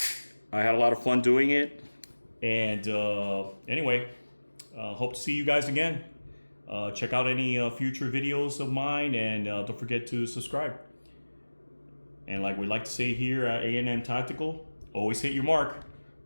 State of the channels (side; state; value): both; inverted; correlation -1.00